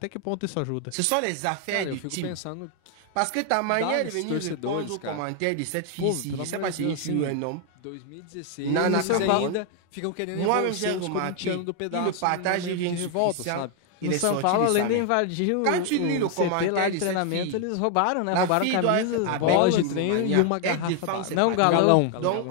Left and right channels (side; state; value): both; different; correlation 0.00